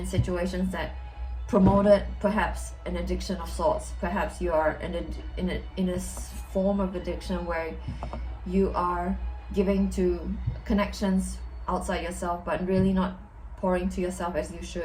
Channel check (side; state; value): both; identical; correlation 1.00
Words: situations that promoted perhaps an addiction of sorts. Perhaps you are in a form of addiction where you are giving to connections outside yourself, but really not pouring to yourself as you